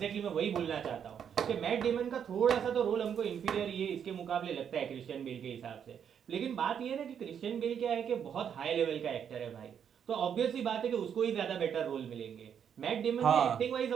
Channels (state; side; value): quieter; left; 8.1 dB